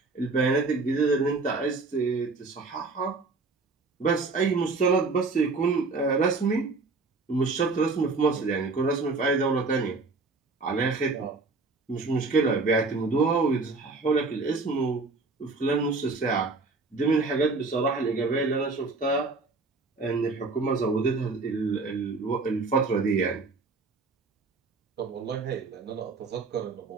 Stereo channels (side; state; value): left; quieter; 3.8 dB